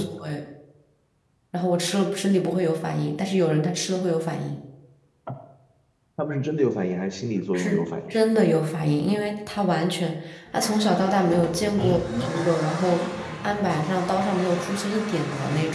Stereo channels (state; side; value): identical; both; correlation 1.00